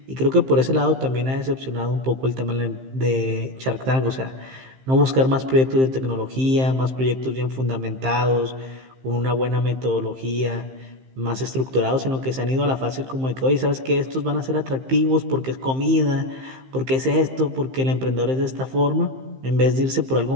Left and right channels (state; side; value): late; left; 15 ms